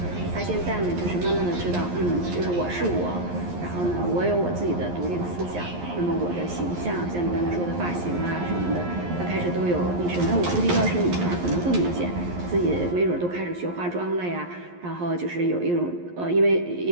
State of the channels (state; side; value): late; left; 11 ms